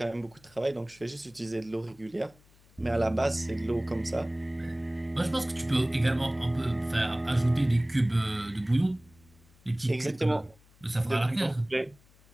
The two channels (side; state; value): left; noise; hum, 28 dB below the sound